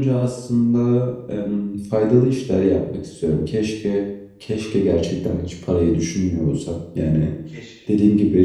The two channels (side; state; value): both; identical; correlation 1.00